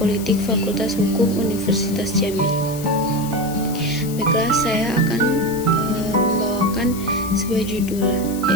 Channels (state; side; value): noise; left; hiss, 13 dB below the sound